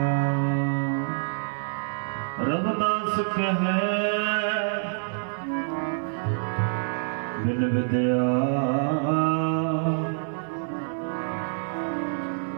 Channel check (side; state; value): left; silent; digital silence